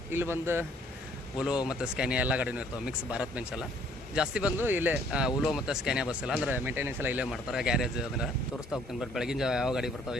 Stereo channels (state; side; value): normal; both; correlation 0.61